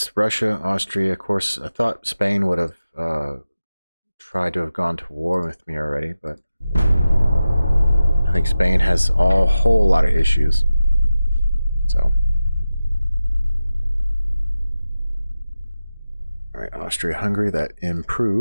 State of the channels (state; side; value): inverted; both; correlation -0.94